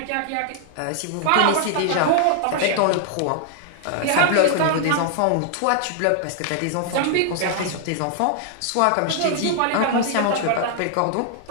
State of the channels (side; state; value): both; different; correlation 0.00